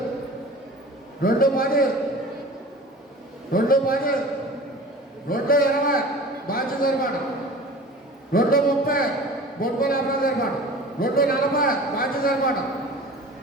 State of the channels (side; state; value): both; normal; correlation 0.40